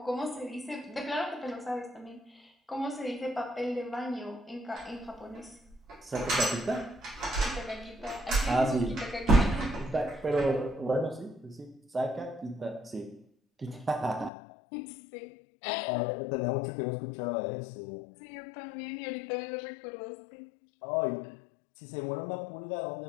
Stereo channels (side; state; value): right; drops out; at 14.3 s